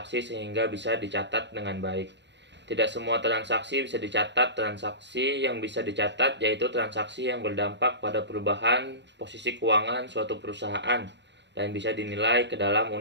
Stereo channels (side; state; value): left; late; 0.51 ms